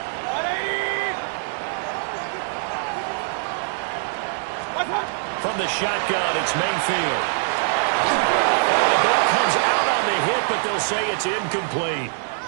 From the shotgun, it's Mayfield. The ball comes out on the hit, but they'll say it's incomplete.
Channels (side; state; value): left; silent; digital silence